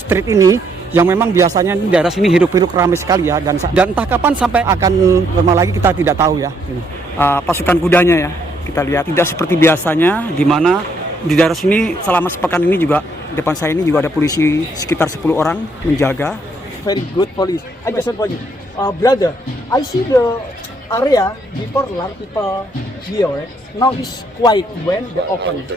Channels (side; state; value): both; normal; correlation 0.71